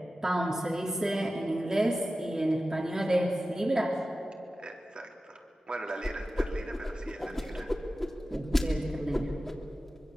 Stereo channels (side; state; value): both; normal; correlation 0.94